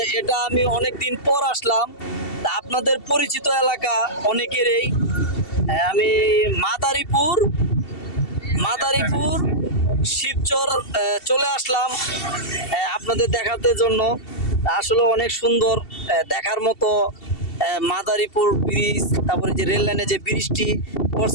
এটা আমি অনেক দিন পর আসলাম। তা আপনাদের পরিচিত এলাকা অনেকেরই। আমি মাদারীপুর শিবচর চলে আসলাম আপনাদের দেখাতে জন্য। আসলে অনেক সুন্দর দেখার মতো মাদারীপুর ব্রিজ, তারপরে যে রেল লাইনে যে ব্রিজটি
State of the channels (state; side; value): late; right; 2.7 ms